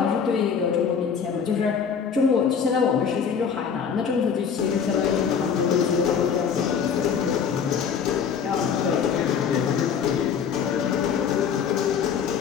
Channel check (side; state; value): right; quieter; 7.0 dB